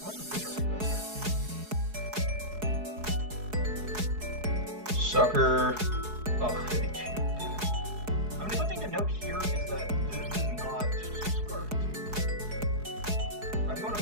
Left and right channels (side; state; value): left; late; 4.7 ms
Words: What's the picture Sucker. Oh, 52. I mean, the one thing to note here is that this is not scarfed. I'm going